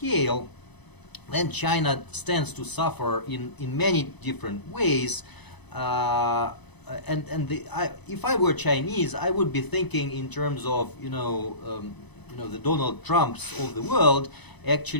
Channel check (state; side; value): late; right; 1.0 ms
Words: then China stands to suffer in many different ways. If I were Chinese, I would be thinking in terms of the Donald Trumps of the world